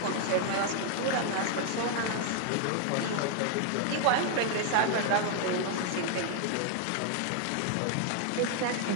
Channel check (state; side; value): different; both; correlation 0.00